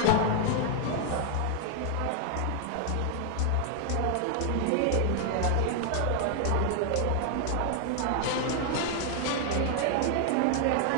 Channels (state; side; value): different; both; correlation 0.00